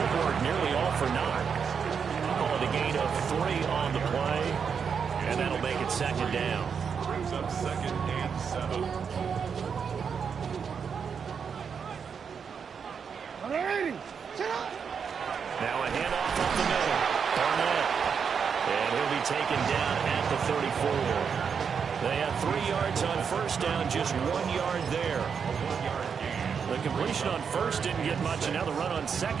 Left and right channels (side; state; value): left; quieter; 6.5 dB